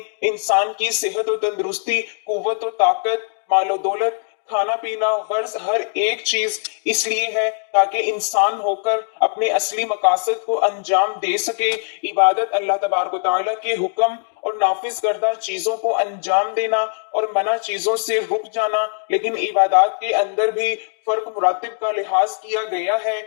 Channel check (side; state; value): right; silent; digital silence